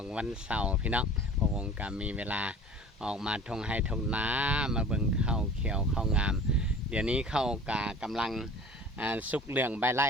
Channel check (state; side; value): normal; both; correlation 0.43